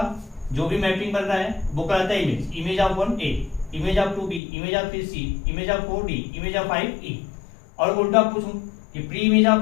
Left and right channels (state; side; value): drops out; right; at 4.4 s